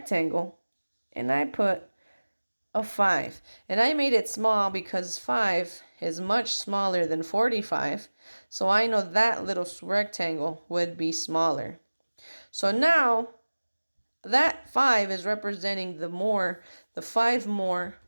and I put a 5. And I made it small because 5 is much smaller than 45. So I know that little rectangle would be smaller. So now that 5 is representing the 5 more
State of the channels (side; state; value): both; inverted; correlation -1.00